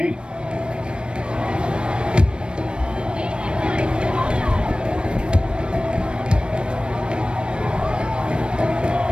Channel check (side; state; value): left; late; 0.055 ms